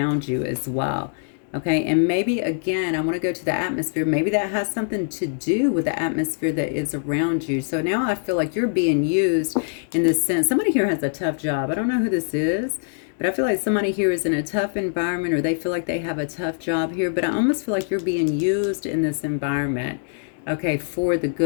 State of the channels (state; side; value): silent; right; digital silence